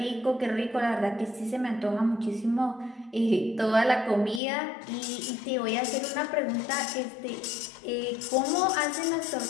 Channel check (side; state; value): right; drops out; at 4.4 s